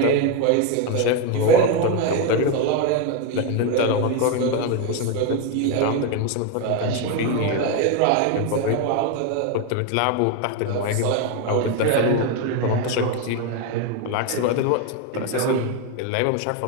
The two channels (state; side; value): different; both; correlation 0.02